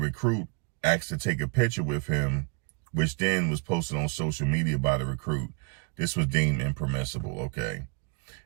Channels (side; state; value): left; quieter; 34.1 dB